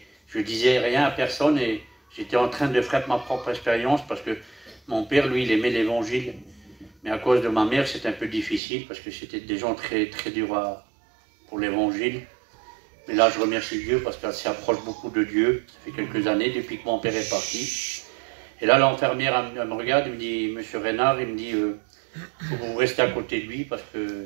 je disais rien à personne et j'étais en train de faire ma propre expérience parce que mon père, lui, il aimait l'évangile. Mais à cause de ma mère, c'était un peu difficile parce que c'était des gens très, très durs pour l'évangile. Mais là, je remercie Dieu parce qu'elle s'approche beaucoup de Dieu. Ça fait quelques années depuis que mon père est parti. Et là, l'infirmière, elle me regarde, elle me dit, monsieur Renard, il me dit, faut que vous restez à côté de lui parce que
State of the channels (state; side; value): drops out; left; at 8.6 s